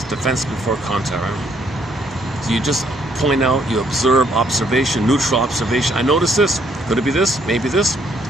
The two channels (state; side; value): normal; both; correlation 0.68